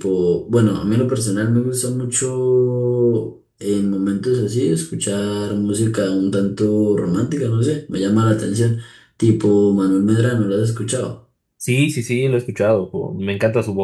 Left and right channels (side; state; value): both; identical; correlation 1.00